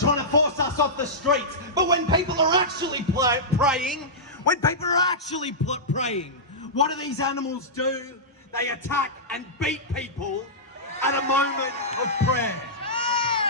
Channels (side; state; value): both; normal; correlation -0.14